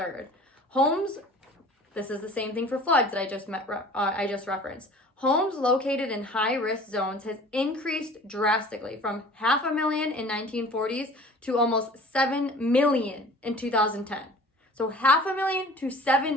Homes, this is the same thing for floods that I just referenced. Homes located in high-risk zones has increased drastically from 500,000 in 1940s to almost 7 million in 2010. So 500,000 to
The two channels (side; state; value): both; normal; correlation 0.45